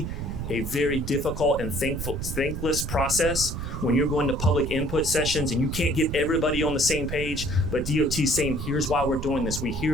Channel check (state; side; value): noise; right; rumble, 5 dB below the sound